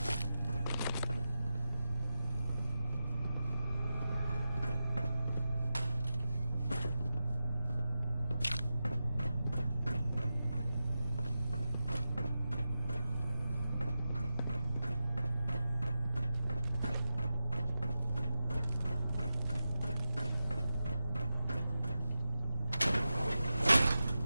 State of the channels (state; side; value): inverted; both; correlation -0.92